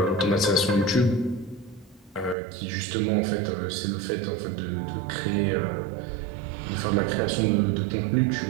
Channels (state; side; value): drops out; left; at 2.4 s